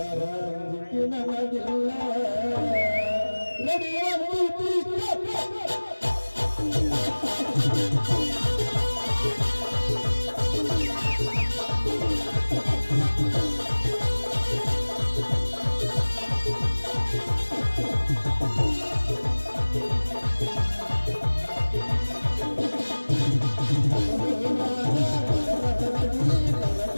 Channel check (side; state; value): both; inverted; correlation -1.00